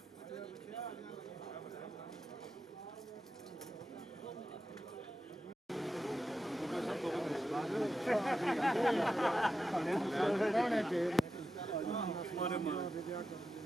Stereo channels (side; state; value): both; normal; correlation 0.89